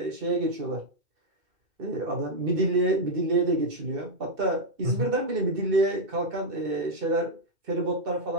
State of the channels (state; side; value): late; left; 2.7 ms